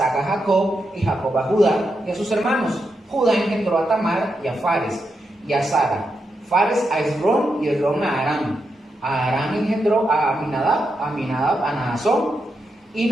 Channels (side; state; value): both; normal; correlation 0.85